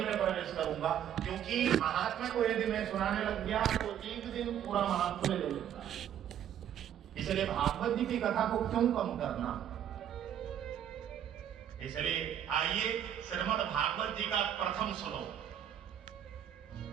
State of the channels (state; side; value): quieter; left; 10.0 dB